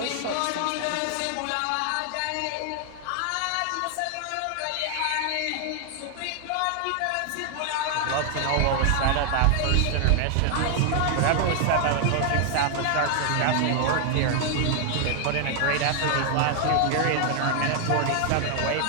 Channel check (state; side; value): different; both; correlation 0.00